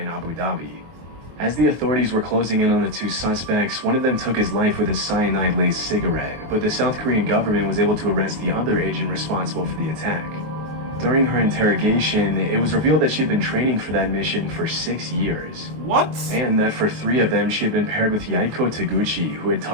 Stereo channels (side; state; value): left; late; 23 ms